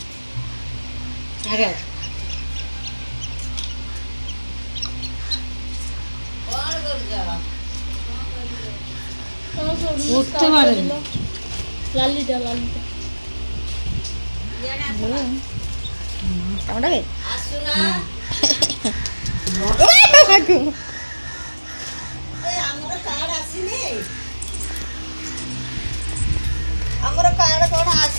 আগে উঠতে পারে লালিটা কামড়াবে? ଆମର କାର୍ଡ କଣ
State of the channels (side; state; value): both; inverted; correlation -1.00